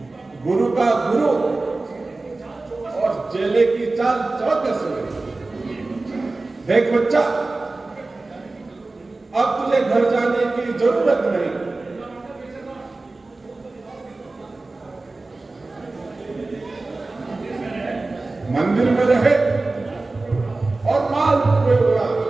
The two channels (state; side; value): quieter; left; 3.3 dB